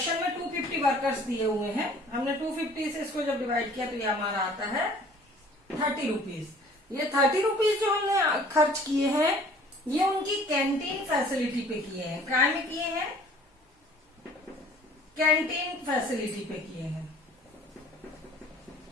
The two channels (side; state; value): both; normal; correlation 0.52